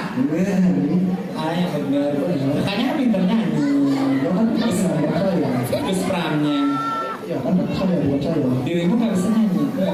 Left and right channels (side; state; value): both; identical; correlation 1.00